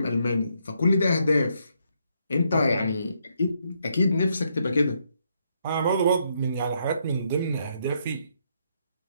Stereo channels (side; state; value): both; inverted; correlation -0.75